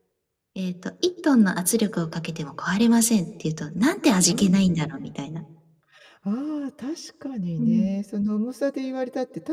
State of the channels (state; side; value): identical; both; correlation 1.00